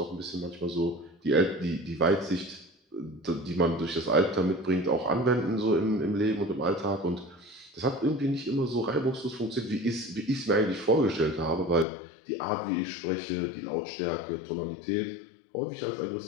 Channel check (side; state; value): right; drops out; at 11.9 s